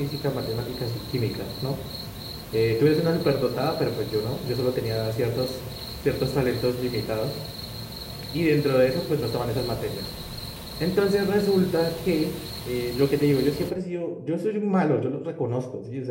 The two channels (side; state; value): both; identical; correlation 1.00